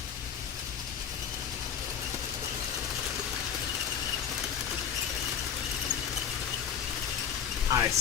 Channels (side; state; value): right; quieter; 8.1 dB